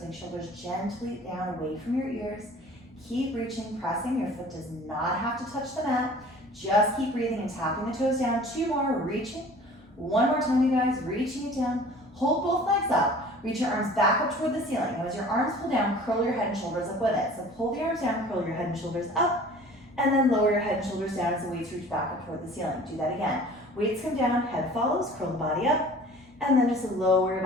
shoulders gently down away from your ears. Keep reaching, pressing. Your foot does not have to touch the mat. Just keep breathing and tapping the toes down. 2 more, reaching. 1 more time, you guys. Reaching it down. Hold both legs up. Reach your arms back up toward the ceiling. Now as your arms pull down, curl your head and shoulders up with it. So pull the arms down, curl your head and shoulders up, and then lower your head and shoulders down as the weights reach back up toward the ceiling. Do that again. Weights come down, head follows, curl the body up, and then just lower your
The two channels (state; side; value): normal; both; correlation 0.46